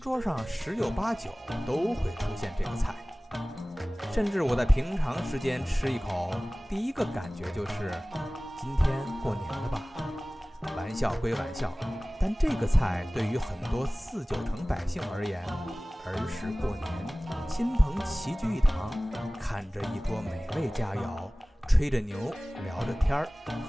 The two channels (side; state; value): both; normal; correlation 0.98